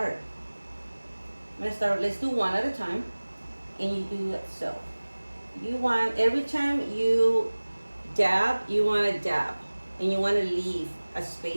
Let's do one at a time, and you do it so. You want every time you dab, you want to dab. and you want to leave a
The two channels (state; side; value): inverted; both; correlation -1.00